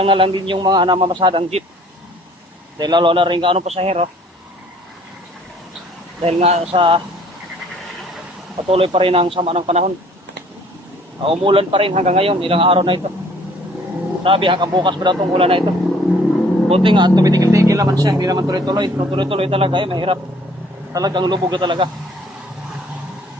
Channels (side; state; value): both; normal; correlation 0.57